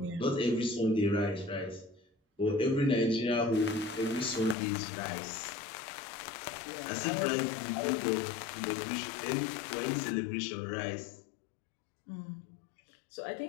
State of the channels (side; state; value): right; drops out; at 4.5 s